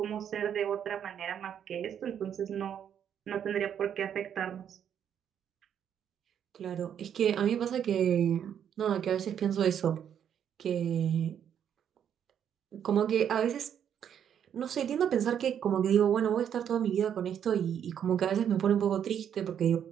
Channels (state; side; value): quieter; left; 8.9 dB